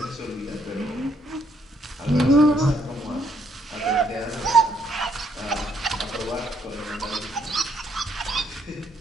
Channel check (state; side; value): normal; both; correlation 0.71